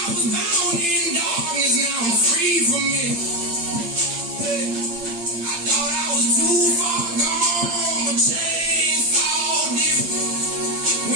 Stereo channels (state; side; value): late; left; 8.7 ms